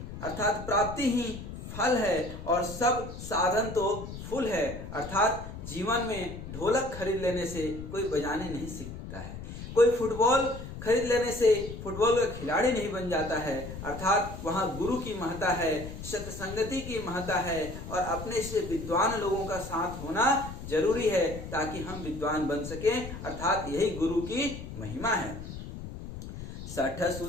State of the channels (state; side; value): noise; left; rumble, 10 dB below the sound